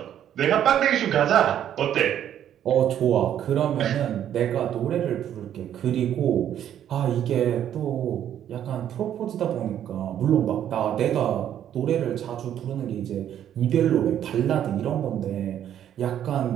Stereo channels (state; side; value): quieter; left; 10.4 dB